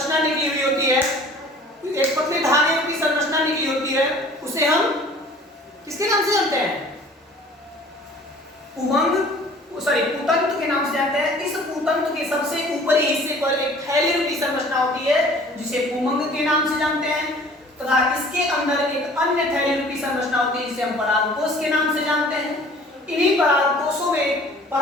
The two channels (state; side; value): normal; both; correlation 0.50